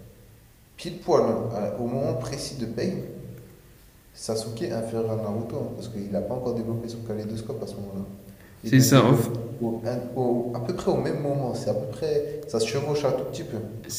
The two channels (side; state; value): both; identical; correlation 1.00